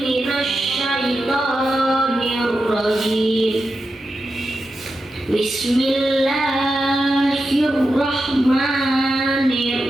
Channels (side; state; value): both; normal; correlation 0.89